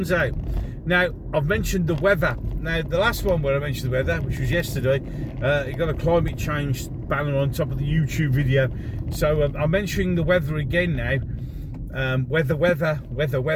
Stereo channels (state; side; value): identical; both; correlation 1.00